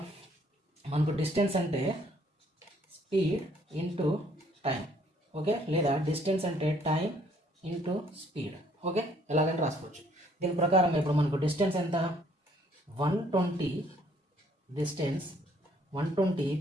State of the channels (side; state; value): both; normal; correlation 0.63